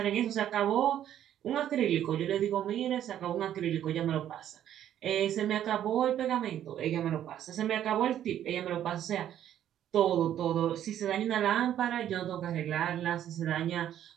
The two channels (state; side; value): quieter; left; 10.9 dB